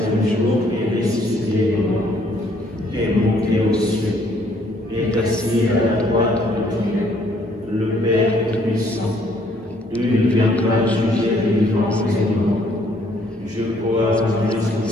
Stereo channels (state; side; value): normal; both; correlation 0.65